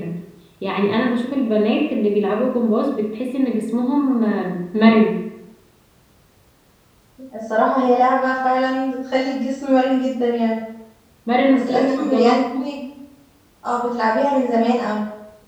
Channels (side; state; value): both; identical; correlation 1.00